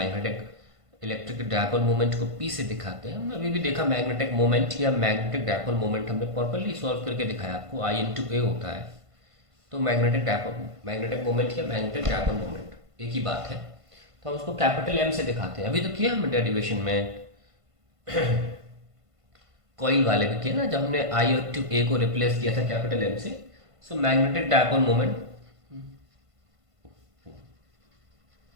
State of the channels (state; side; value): late; left; 1.5 ms